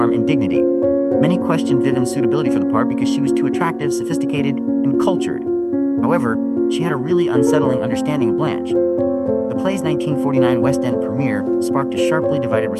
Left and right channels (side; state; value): both; identical; correlation 1.00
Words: and dignity. Many questioned Vivien's suitability for the part because she was too attractive, sophisticated, and cultured. However, she had a really unsettling understanding of Blanche. The play's 1949 West End premiere sparked a sharply divided